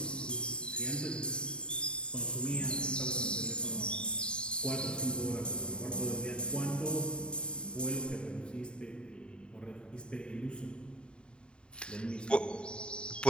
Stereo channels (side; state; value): right; late; 0.052 ms